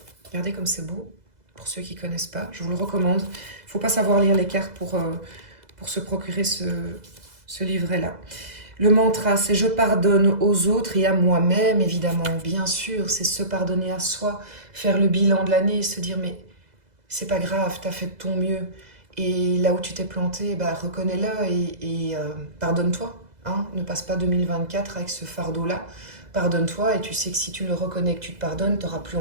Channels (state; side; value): late; left; 2.0 ms